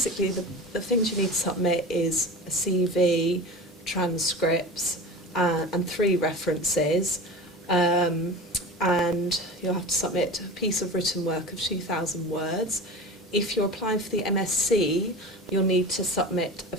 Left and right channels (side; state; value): both; normal; correlation 0.32